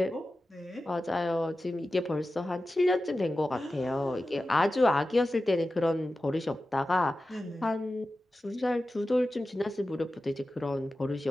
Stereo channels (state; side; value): normal; both; correlation 0.94